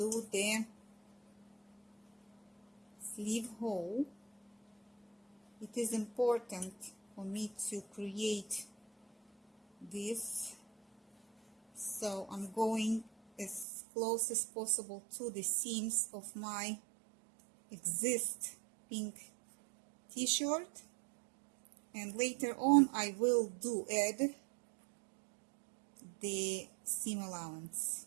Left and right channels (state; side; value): drops out; left; at 13.7 s